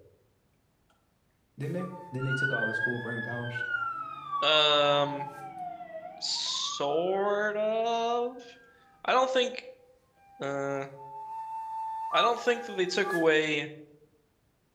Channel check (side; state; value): both; identical; correlation 1.00